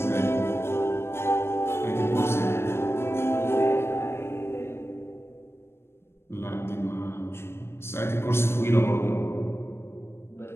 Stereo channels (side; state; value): right; late; 0.12 ms